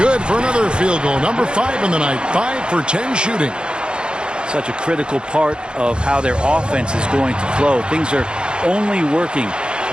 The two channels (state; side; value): late; left; 0.051 ms